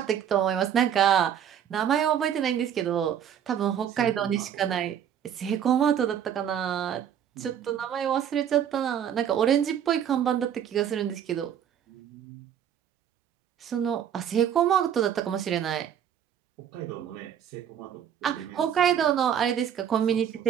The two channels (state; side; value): quieter; left; 9.1 dB